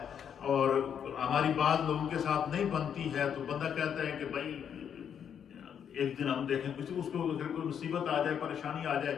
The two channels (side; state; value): right; quieter; 8.3 dB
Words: اور ہماری بعض لوگوں کے ساتھ نہیں بنتی ہے، تو بندہ کہتا ہے کہ بھائی ایک دن ہم دیکھیں کسی اس کو اگر کوئی مصیبت آ جائے، پریشانی آ جائے،